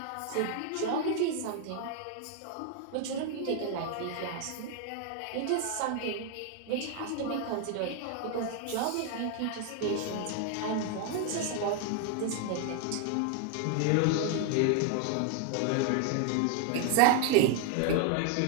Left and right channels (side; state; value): both; different; correlation 0.00